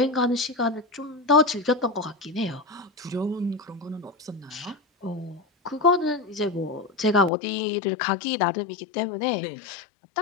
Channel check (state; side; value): drops out; right; at 7.3 s